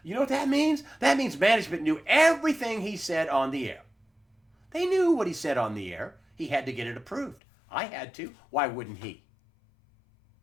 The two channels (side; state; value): right; drops out; at 7.4 s